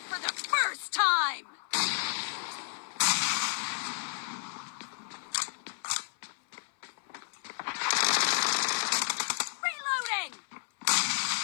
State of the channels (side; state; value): right; silent; 55 dB below the other